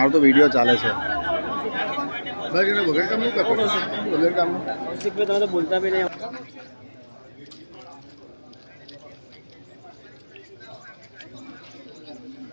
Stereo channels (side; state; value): both; inverted; correlation -1.00